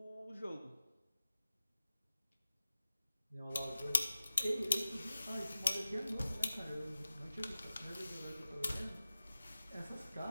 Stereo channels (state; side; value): inverted; both; correlation -0.95